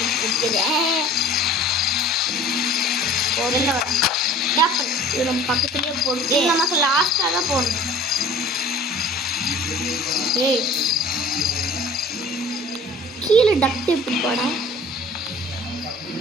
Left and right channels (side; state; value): both; normal; correlation 0.46